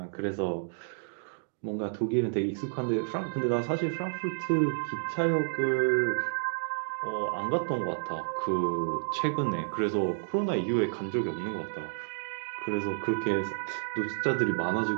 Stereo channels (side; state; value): left; silent; digital silence